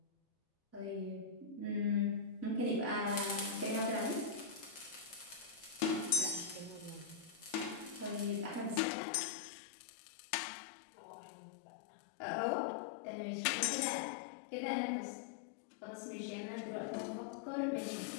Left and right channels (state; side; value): drops out; right; at 8.8 s